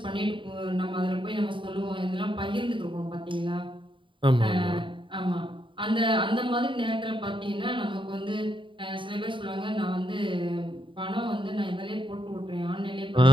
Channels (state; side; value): late; left; 0.24 ms